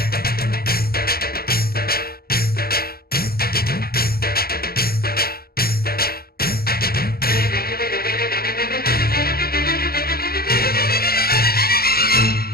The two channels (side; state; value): right; late; 0.44 ms